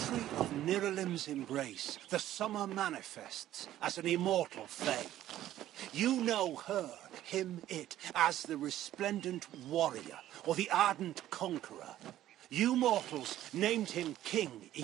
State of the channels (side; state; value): left; quieter; 13.1 dB